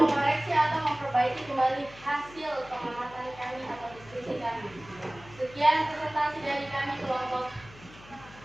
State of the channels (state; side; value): noise; left; hum, 20 dB below the sound